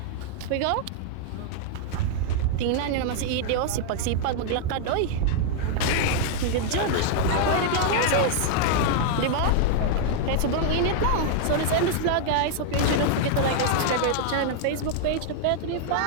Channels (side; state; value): both; different; correlation -0.01